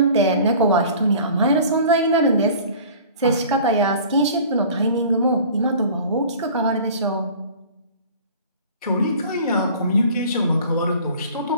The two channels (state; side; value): inverted; both; correlation -0.45